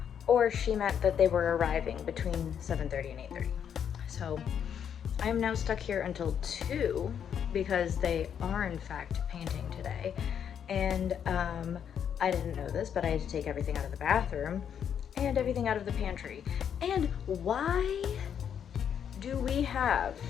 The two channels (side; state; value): right; quieter; 8.4 dB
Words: or she meant that they were arriving between 7:30 and 8:30. So I'm now stuck here until 2 because they are in fact painting today. And I didn't know this, but I had to take everything out of the bathroom and everything out of the pantry. And why do we have